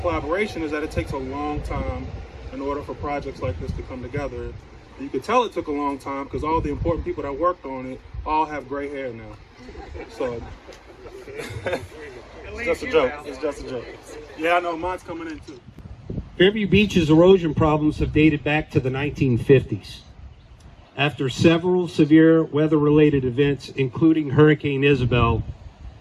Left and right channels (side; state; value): both; identical; correlation 1.00